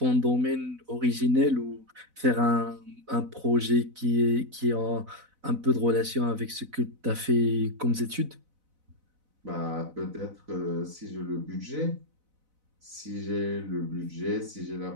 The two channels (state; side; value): late; left; 4.0 ms